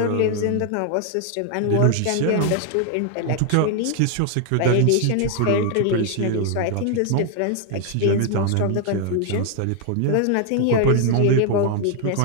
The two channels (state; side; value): different; both; correlation 0.00